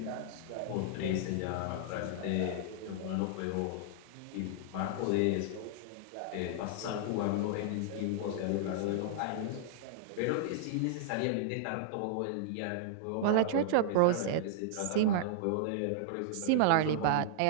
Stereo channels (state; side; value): different; both; correlation -0.01